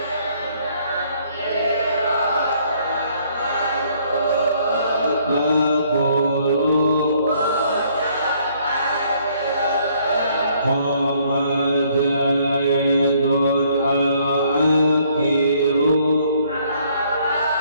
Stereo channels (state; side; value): inverted; both; correlation -0.65